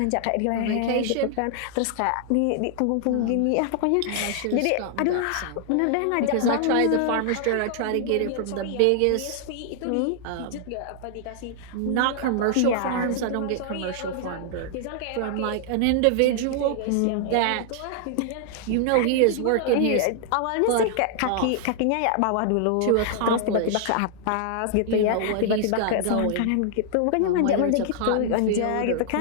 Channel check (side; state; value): both; different; correlation -0.01